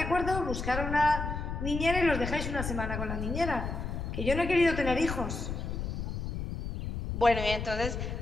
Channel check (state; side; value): noise; left; rumble, 4 dB below the sound